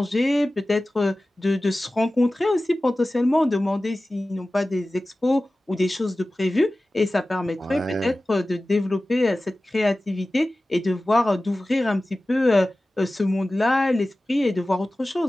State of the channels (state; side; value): normal; both; correlation 0.96